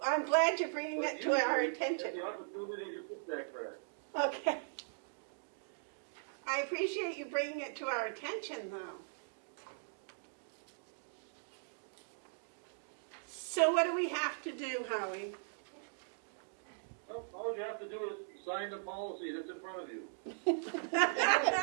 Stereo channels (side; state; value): left; silent; digital silence